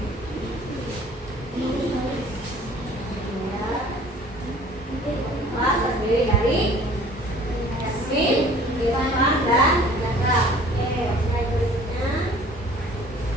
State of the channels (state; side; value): normal; both; correlation 0.51